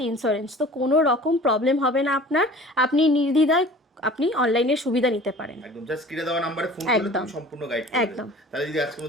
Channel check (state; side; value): normal; both; correlation 0.44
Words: ইন্স্যুরেন্স, তো কোনো রকম প্রবলেম হবে না আপনার, আপনি নির্দ্বিধায় আপনি অনলাইনের সুবিধা নিতে পারেন। একদম জাস্ট স্ক্রিনে দেওয়া নম্বরে ফোন করলে তুমি সম্পূর্ণ গাইড করবে। একদম। তাহলে যদি আজকের